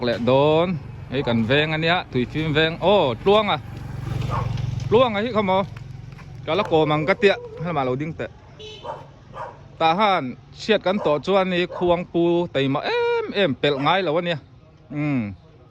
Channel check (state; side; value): identical; both; correlation 1.00